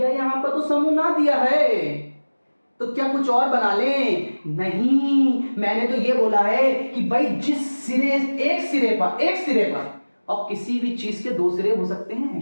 यहां पर तो समूह ना दिया है, तो क्या कुछ और बना लें? नहीं, मैंने तो ये बोला है कि भाई जिस सिरे, एक सिरे पर, और किसी भी चीज के 2 सिरे हो सकते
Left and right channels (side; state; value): both; inverted; correlation -1.00